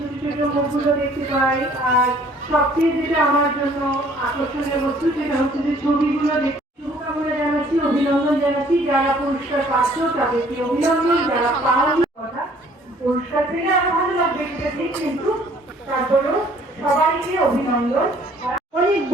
ছোট মুখগুলো দেখতে পাই। আর সবচেয়ে যেটা আমার জন্য আকর্ষণীয় বস্তু সেটা হচ্ছে যে ছবিগুলো দেখতে। শুভকামনা জানাচ্ছি, অভিনন্দন জানাচ্ছি যারা পুরস্কার পাচ্ছ তাদেরকে অভিনন্দন, যারা পাওনি কথা পুরস্কার পেলে আরো ভালো লাগবে সেটা ঠিক, কিন্তু তারপরেও সবাইকে অভিনন্দন। অনেক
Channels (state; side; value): normal; both; correlation 0.58